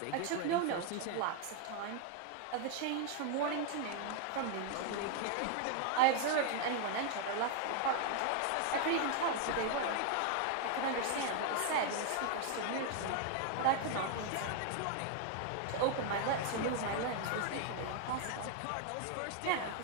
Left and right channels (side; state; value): both; different; correlation 0.00